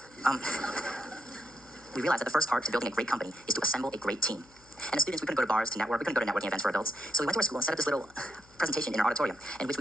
we realized that the first part to building a great company is to assemble a great team. And as students, we couldn't go to bars to network, we couldn't go to networking events for adults. So we went to our school and set up this little presentation in our auditorium in which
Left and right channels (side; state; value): left; noise; hum, 27 dB below the sound